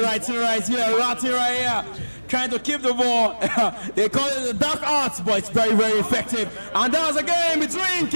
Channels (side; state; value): both; inverted; correlation -1.00